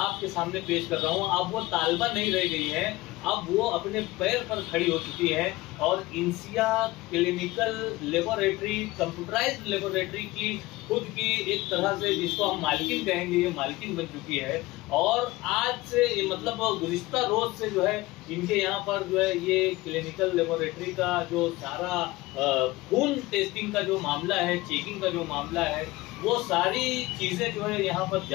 आपके सामने पेश कर रहा हूँ, अब वो तालिबा नहीं रह गई है, अब वो अपने पैर पर खड़ी हो चुकी है और इंसिया क्लिनिकल लेबोरेटरी, कंप्यूटराइज्ड लेबोरेटरी की खुद की एक तरह से जिसको हम मालकिन कहेंगे, ये मालकिन बन चुकी है। और आज से मतलब गुज़िश्ता रोज से जो है इनके यहाँ पर जो है ये क्लिनिकल लेबोरेटरी का जो सारा खून टेस्टिंग का जो मामला है, चेकिंग का जो मामला है, वो सारी चीज़ें जो है यहाँ पर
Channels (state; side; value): quieter; right; 19.7 dB